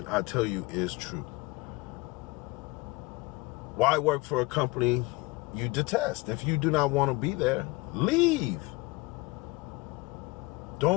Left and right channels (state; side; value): quieter; right; 23.8 dB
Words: I tell you, is true. Why work for a company you detest? If you do not want to be there, leave.